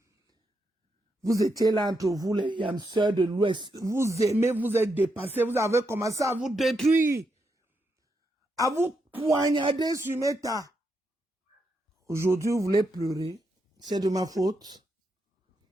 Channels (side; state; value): both; normal; correlation 0.82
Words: Vous étiez là entre vous, les yamseurs de l'Ouest. Vous aimez, vous êtes dépassés, vous avez commencé à vous détruire. À vous poignarder sur Meta. Aujourd'hui, vous voulez pleurer. C'est de ma faute.